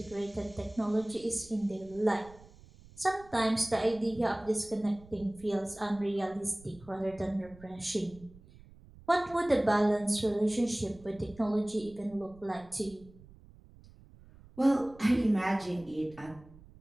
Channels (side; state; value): right; noise; rumble, 22 dB below the sound